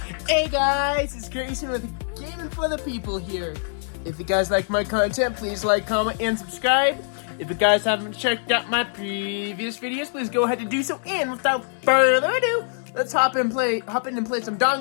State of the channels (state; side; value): silent; right; 63 dB below the other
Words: Hey guys, it's Grayson with Gaming for the People here. If you guys like my content, please like, comment, and subscribe. If you guys haven't checked out my previous videos, please go ahead and do so. And without further ado, let's hop in and play some